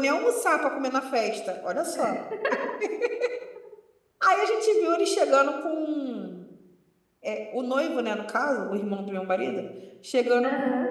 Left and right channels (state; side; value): identical; both; correlation 1.00